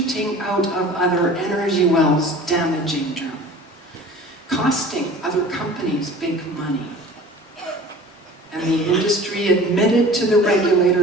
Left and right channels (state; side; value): normal; both; correlation 0.43